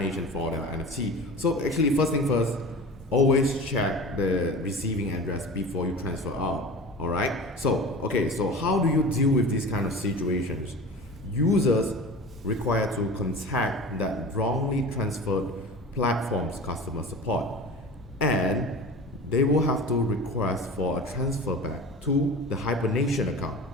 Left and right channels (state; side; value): normal; both; correlation 0.35